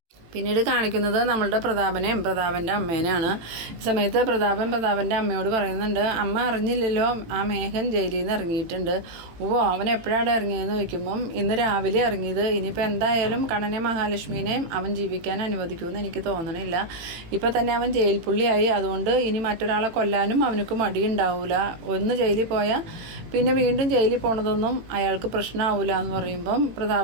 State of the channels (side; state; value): left; late; 18 ms